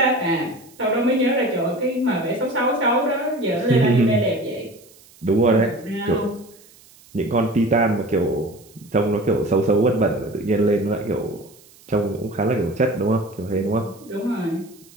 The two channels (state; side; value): noise; right; hiss, 26 dB below the sound